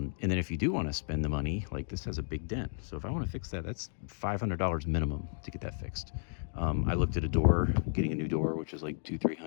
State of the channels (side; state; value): right; silent; digital silence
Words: then if you do want to spend the money, like, this has a big dent. So if I want to fix that, that's $500 minimum to get that fixed. I looked at a door, getting a new door, which is like